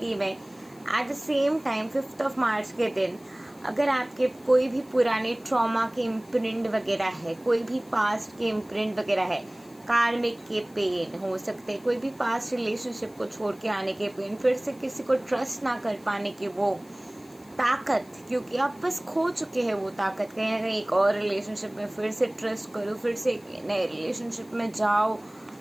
में। एट द सेम टाइम 5 मार्च के दिन अगर आपके कोई भी पुराने ट्रॉमा के इम्प्रिंट वगैरह है, कोई भी पास्ट के इम्प्रिंट वगैरह है, कार्मिक के पेन हो सकते हैं, कोई भी पास्ट रिलेशनशिप को छोड़ के आने के पेन, फिर से किसी को ट्रस्ट ना कर पाने की वो ताकत, क्योंकि आप बस खो चुके हैं वो ताकत, कहीं ना कहीं एक और रिलेशनशिप में फिर से ट्रस्ट करो, फिर से एक नए रिलेशनशिप में जाओ,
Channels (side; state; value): left; noise; hiss, 27 dB below the sound